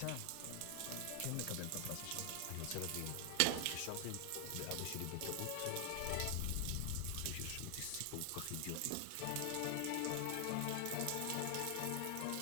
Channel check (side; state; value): both; different; correlation 0.00